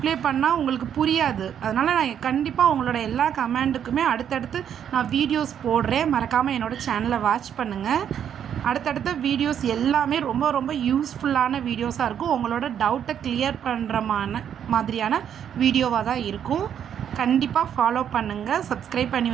பண்ணால் உங்களுக்கு புரியாது. அதனால் நான் கண்டிப்பாக உங்களோட எல்லா கமெண்ட்டுக்குமே அடுத்தடுத்து நான் வீடியோஸ் போடுறேன். மறக்காமல் என்னோடய சேனலை வாட்ச் பண்ணுங்கள். அடுத்தடுத்த வீடியோஸ் எல்லாமே ரொம்ப ரொம்ப யூஸ்ஃபுல்லான வீடியோஸாக இருக்கும். உங்களோட டவுட்டை கிளியர் பண்ணுற மாதிரியான வீடியோவாக தான் இருக்கும். கண்டிப்பாக ஃபாலோ பண்ணுங்கள், சப்ஸ்கிரைப் பண்ணி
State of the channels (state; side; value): quieter; left; 9.0 dB